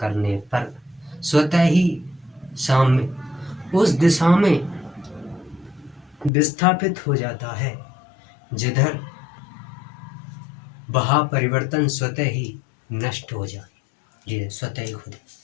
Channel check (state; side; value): drops out; right; at 6.3 s